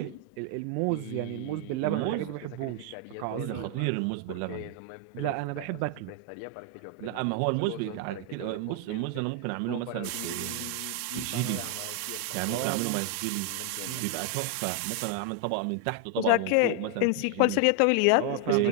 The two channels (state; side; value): different; both; correlation 0.00